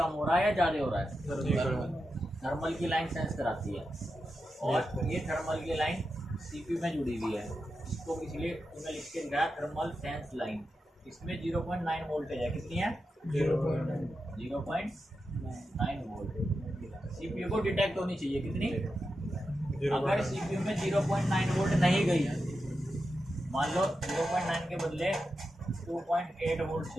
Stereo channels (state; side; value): normal; both; correlation 0.89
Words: हो रहा है या ज़्यादा हो रहा है, थर्मल की लाइन सेंस कराती है। और ये थर्मल की लाइन CPU में जुड़ी हुई है, इसको इसलिए उन्हें लिख के दिखाया थर्मल सेंस लाइन। इसमें 0.9 वोल्टेज है, कितनी है 0.9 वोल्ट। CPU को डिटेक्ट होनी चाहिए कितनी, अगर CPU में 0.9 वोल्ट नहीं गई, मान लो 0.9 के बदले 2.8 वोल्ट